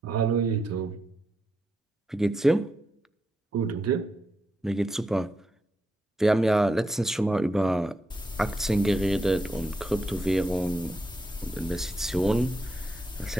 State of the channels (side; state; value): both; normal; correlation 0.84